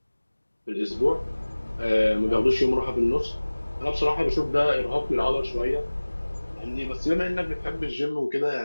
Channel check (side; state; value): both; inverted; correlation -1.00